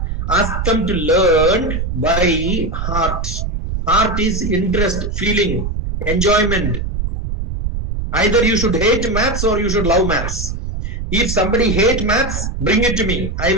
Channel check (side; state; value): right; noise; rumble, 3 dB below the sound